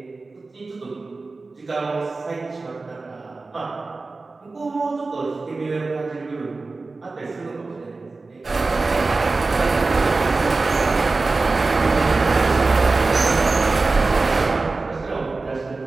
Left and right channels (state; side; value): quieter; left; 3.7 dB